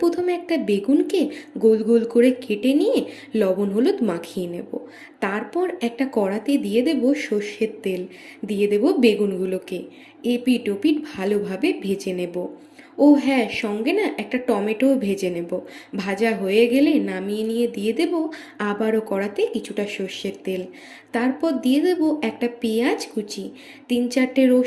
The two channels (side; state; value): both; identical; correlation 1.00